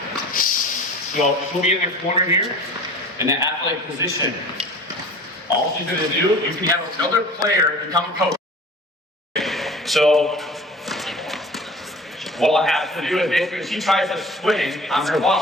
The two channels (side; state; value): both; normal; correlation 0.41